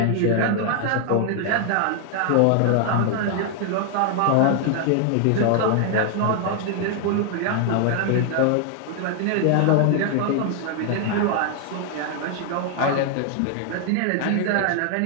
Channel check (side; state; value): both; different; correlation 0.00